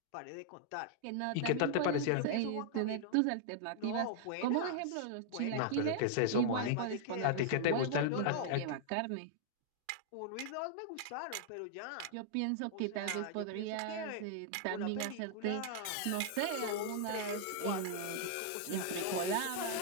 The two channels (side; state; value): both; different; correlation -0.01